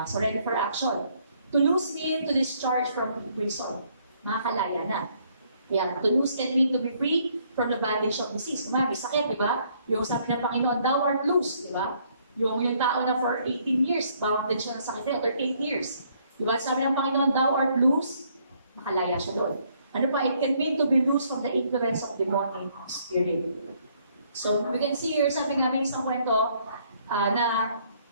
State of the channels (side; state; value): both; inverted; correlation -0.67